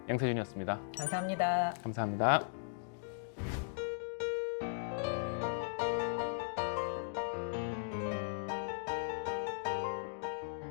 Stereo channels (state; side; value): silent; right; digital silence